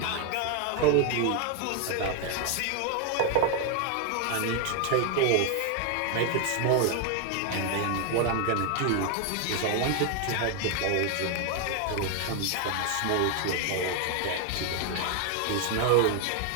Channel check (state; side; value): different; both; correlation 0.01